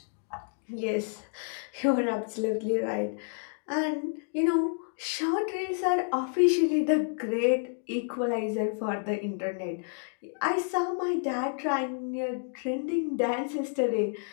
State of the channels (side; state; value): right; silent; digital silence